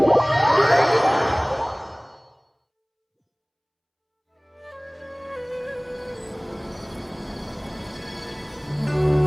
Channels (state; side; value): identical; both; correlation 1.00